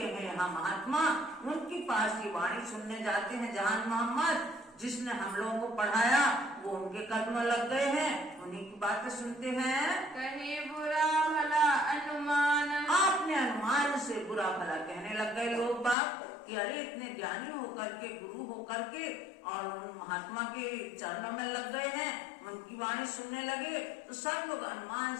हैं हम महात्मा, उनके पास ये वाणी सुनने जाते हैं। जहान मोहम्मद जिसने हम लोगों को पढ़ाया वो उनके कदम में लग गए हैं, उन्हीं की बातें सुनते हैं। कहे बुरा भला अनुमान, आपने अनुमान से बुरा भला कहने लग गए लोग बाप कि अरे इतने ज्ञानी होकर के, गुरु होकर के और उन महात्मा के चरणों में लग गए हैं, उनकी वाणी सुनने लगे तो सब लोग अनुमान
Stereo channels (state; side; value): drops out; right; at 16.0 s